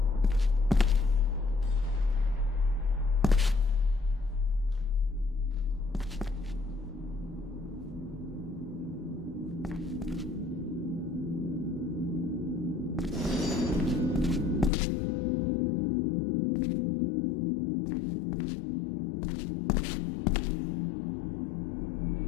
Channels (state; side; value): drops out; right; at 14.7 s